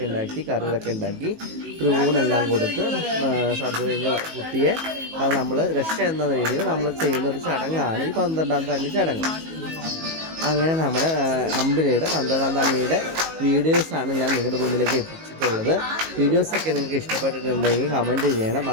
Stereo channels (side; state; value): left; late; 19 ms